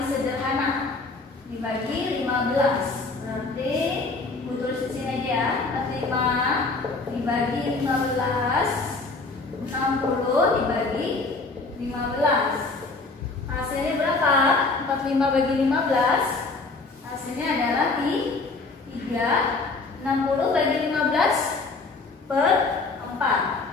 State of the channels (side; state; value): right; quieter; 3.7 dB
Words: sederhana. Dibagi 15. Berarti Bu tulis di sini aja ya. 45 dibagi 15. 60 dibagi 15. Hasilnya berapa? 45 bagi 15. Hasilnya adalah 3. 60 bagi 15 per